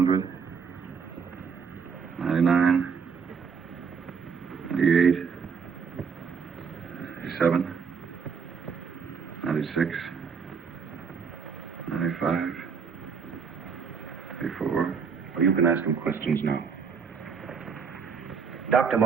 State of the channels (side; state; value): left; quieter; 6.0 dB